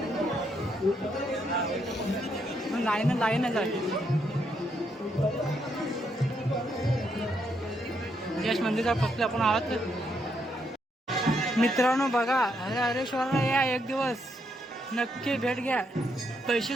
लाईनच आहे. यश मंदिरचा फक्त आपण आहोत मित्रांनो. बघा हरेश्वरला या एक दिवस नक्की भेट घ्या.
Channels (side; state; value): both; normal; correlation 0.77